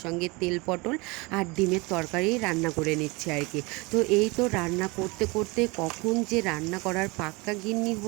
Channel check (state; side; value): quieter; left; 26.0 dB